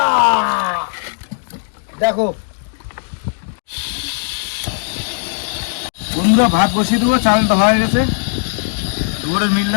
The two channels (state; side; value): silent; right; digital silence